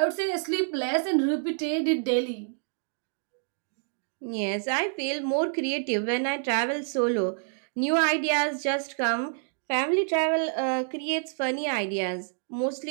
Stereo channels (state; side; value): silent; left; digital silence